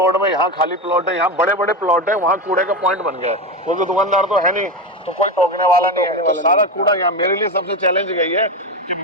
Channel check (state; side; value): normal; both; correlation 0.17